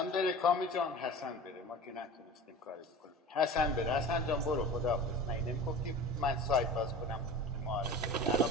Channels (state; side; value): normal; both; correlation 0.36